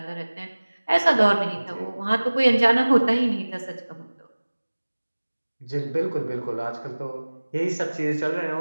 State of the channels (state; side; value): inverted; both; correlation -1.00